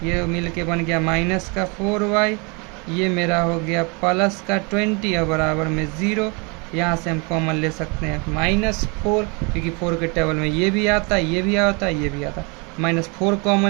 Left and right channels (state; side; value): quieter; left; 31.1 dB